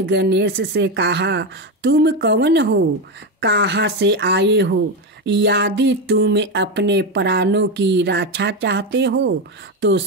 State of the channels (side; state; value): both; normal; correlation 0.12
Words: गणेश से कहा, तुम कौन हो? कहाँ से आए हो? यदि तुम अपने प्राणों की रक्षा चाहते हो तो